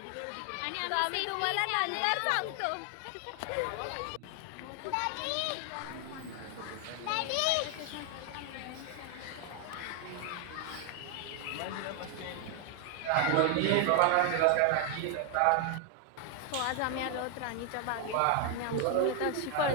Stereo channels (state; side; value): different; both; correlation 0.00